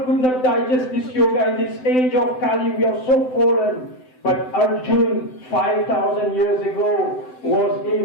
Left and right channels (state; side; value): late; right; 7.8 ms